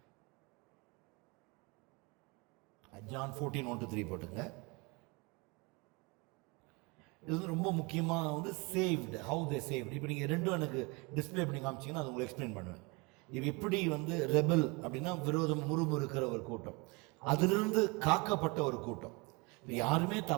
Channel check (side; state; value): left; quieter; 28.0 dB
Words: John 14:1 to 3 போட்டுங்க. இது வந்து ரொம்ப முக்கியமாக வந்து சேவ்டு, ஹவு தே சேவ்டு. இப்போ நீங்கள் ரெண்டும் எனக்கு டிஸ்பிளே பண்ணி காமிச்சிங்கன்னா அது உங்களுக்கு எக்ஸ்பிளைன் பண்ணுவேன். இது எப்படி வந்து ரெபல் அப்படின்னா விரோதம் முறுமுறுக்கிற ஒரு கூட்டம், அதிலிருந்து காக்கப்பட்ட ஒரு கூட்டம். இப்போ யாருமே